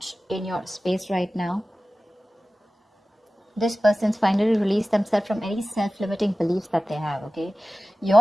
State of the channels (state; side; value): normal; both; correlation 0.96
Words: in your space right now. This person's finally released themselves from any self-limiting beliefs that they have, okay?